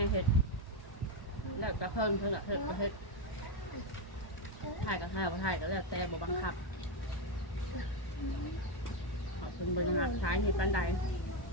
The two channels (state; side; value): late; right; 1.2 ms